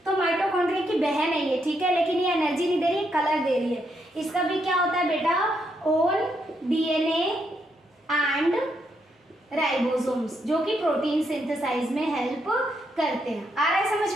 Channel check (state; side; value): normal; both; correlation 0.78